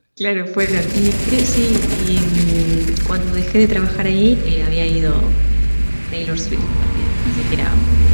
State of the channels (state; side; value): inverted; both; correlation -1.00